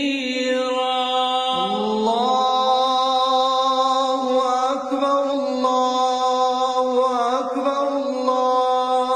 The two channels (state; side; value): identical; both; correlation 1.00